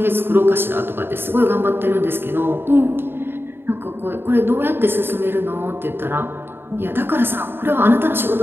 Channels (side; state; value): left; late; 0.11 ms